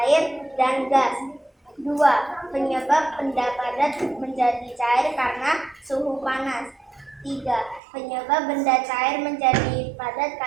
dan gas. 2, penyebab benda padat menjadi cair karena suhu panas. 3, penyebab benda cair menjadi padat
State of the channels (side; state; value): left; drops out; at 7.8 s